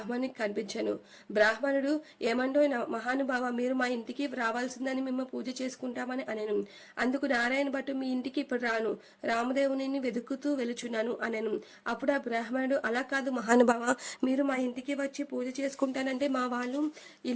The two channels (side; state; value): both; identical; correlation 1.00